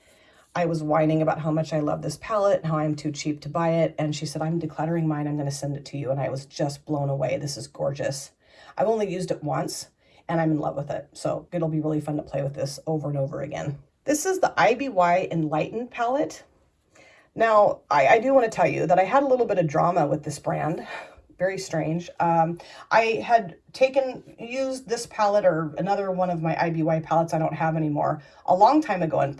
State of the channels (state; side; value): identical; both; correlation 1.00